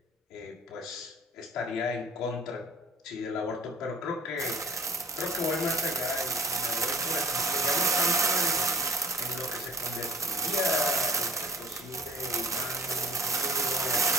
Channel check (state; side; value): normal; both; correlation 0.48